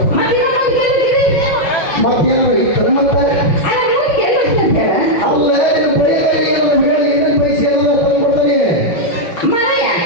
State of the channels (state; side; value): late; right; 6.2 ms